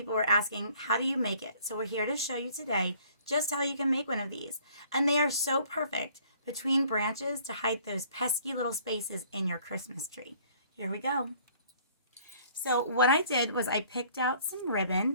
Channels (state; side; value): inverted; both; correlation -0.57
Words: were asking, how do you make it? So we're here to show you today just how you can make one of these. And they are so perfect between branches to hide those pesky little spaces in your Christmas tree. Here we go. So what I did was I picked out some